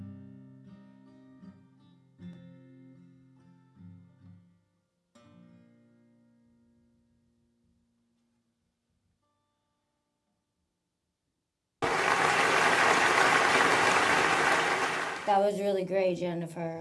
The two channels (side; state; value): both; identical; correlation 1.00